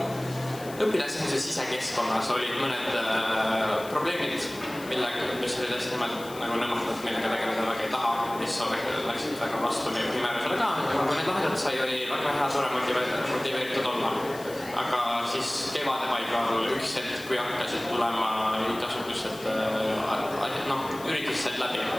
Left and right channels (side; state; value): left; noise; hiss, 17 dB below the sound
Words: õpilasesinduse sisekeskkonnas olid mõned probleemid, mis olid hästi nõmmatud, millega tegeleda väga ei taha, mis läksid väga vastu meie määrusele ka. Kui need lahendatud sai, oli väga hea tore motiveeritud olla. Aga siis kevade paigal üks hetk, kui hakkasid tulema igasugused üritused läbi